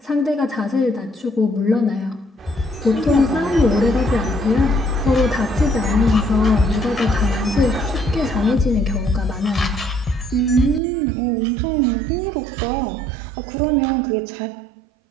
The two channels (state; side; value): drops out; left; at 10.8 s